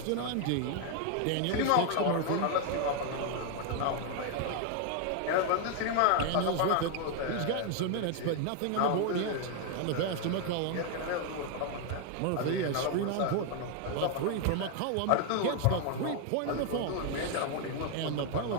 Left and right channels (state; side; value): different; both; correlation 0.01